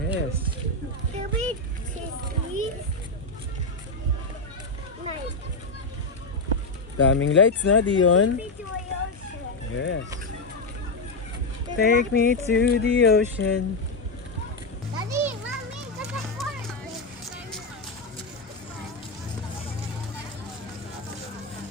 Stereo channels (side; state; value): right; quieter; 3.2 dB